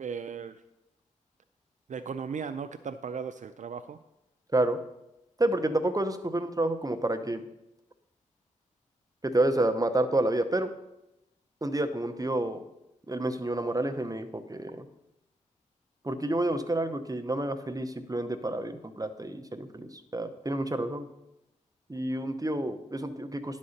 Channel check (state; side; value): normal; both; correlation 0.79